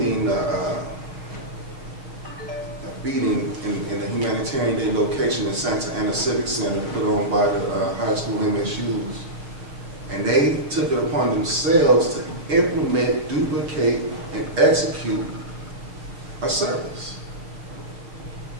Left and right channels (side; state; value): left; late; 6.3 ms